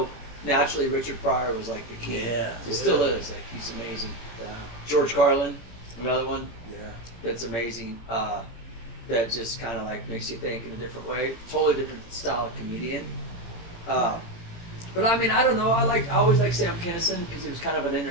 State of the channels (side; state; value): right; late; 18 ms